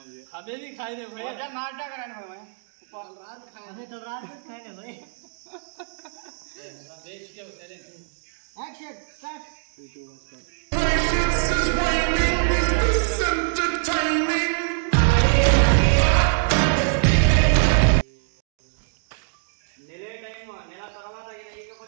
हमें भी खाए दे भाई, नाटक कराने भाई, रात खाए हमें तो रात में खाए ना भाई. Action start. నెలే టైం, నెల తర్వాత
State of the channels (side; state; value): left; silent; 63 dB below the other